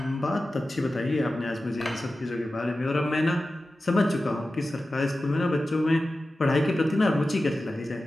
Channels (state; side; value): normal; both; correlation 0.94